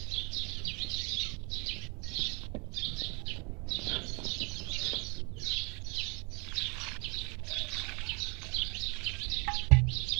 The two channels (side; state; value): left; quieter; 31.3 dB